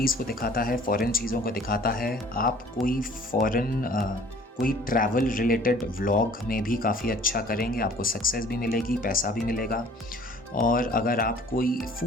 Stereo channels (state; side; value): normal; both; correlation 0.52